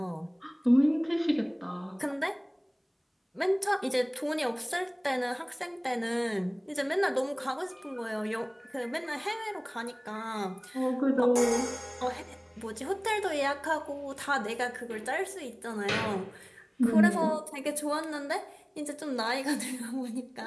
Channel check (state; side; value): identical; both; correlation 1.00